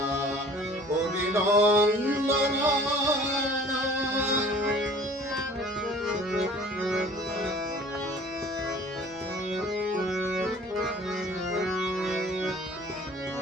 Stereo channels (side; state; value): both; normal; correlation 0.48